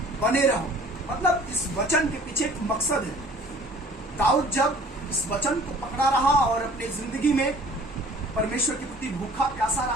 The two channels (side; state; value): both; normal; correlation 0.50